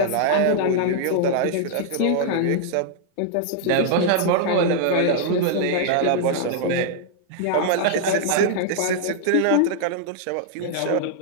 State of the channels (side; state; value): both; different; correlation -0.01